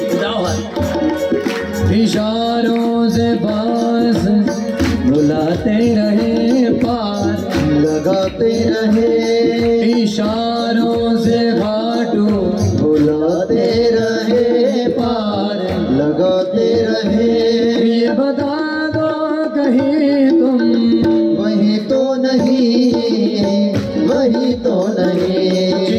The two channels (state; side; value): identical; both; correlation 1.00